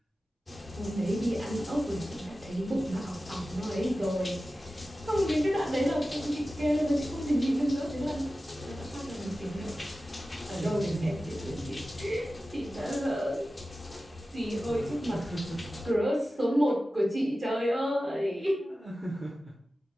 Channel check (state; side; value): normal; both; correlation 0.95